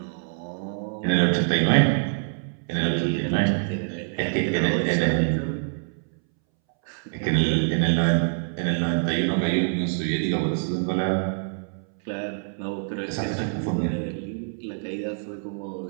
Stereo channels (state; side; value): silent; left; 61 dB below the other